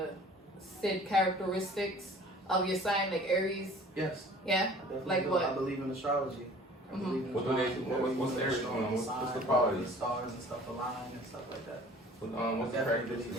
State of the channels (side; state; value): both; normal; correlation 0.48